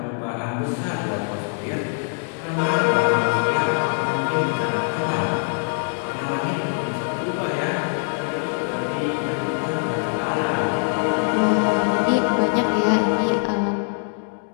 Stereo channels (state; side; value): silent; right; 58 dB below the other